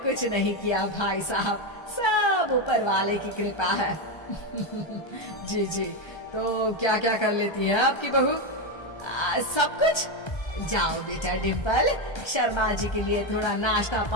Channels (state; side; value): late; right; 1.3 ms